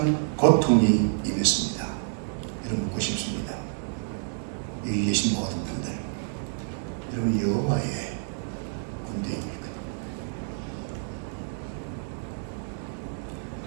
고통이 임했습니다. 여러분, 묻고 싶습니다. 여기 계신 모든 분들, 여러분 여호와의 군대입니까?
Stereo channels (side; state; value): left; silent; 59 dB below the other